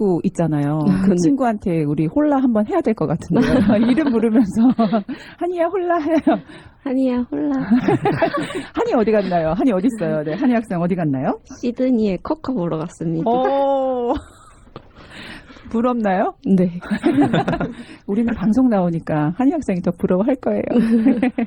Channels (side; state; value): both; identical; correlation 1.00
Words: 있잖아요. 그 네. 친구한테 우리 홀라 한번 해야 될 것 같은데요. 이름 부르면서 한이야 홀라 해요. 한이야 홀라. 한이 어디 갔나요? 한이 어디 있어요? 네, 한이 학생 어디 갔나요? 시드니에 커커 보러 갔습니다. 오, 부럽나요? 네. 우리는 방송 나오니까 한이 학생이 더 부러워할 거예요.